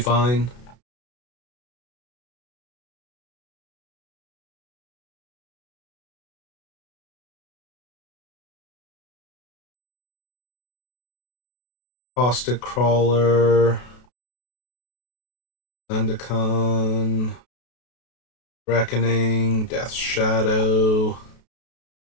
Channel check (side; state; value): right; late; 32 ms